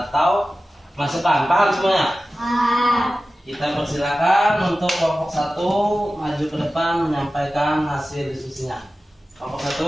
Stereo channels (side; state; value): both; normal; correlation 0.95